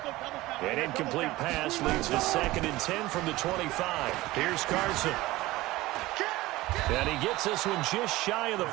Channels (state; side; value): quieter; left; 18.6 dB